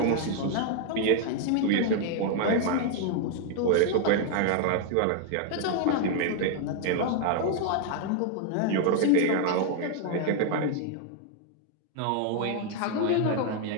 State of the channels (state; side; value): different; both; correlation 0.00